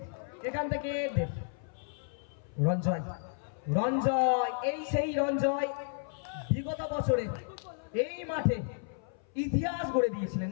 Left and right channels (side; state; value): right; silent; 56 dB below the other